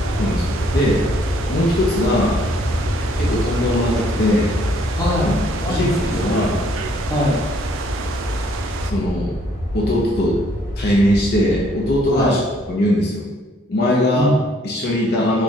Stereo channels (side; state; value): both; normal; correlation 0.65